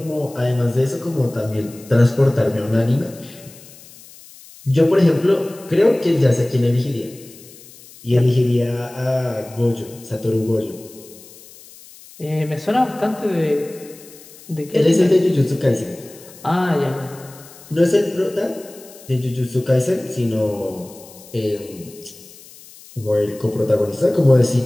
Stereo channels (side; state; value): left; noise; hiss, 21 dB below the sound